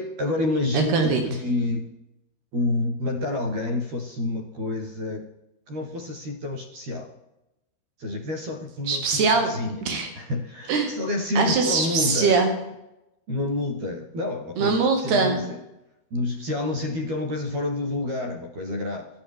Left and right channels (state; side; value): late; left; 13 ms